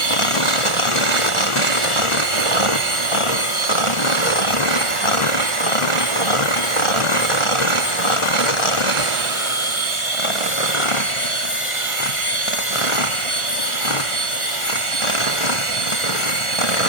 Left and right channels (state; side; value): late; right; 1.4 ms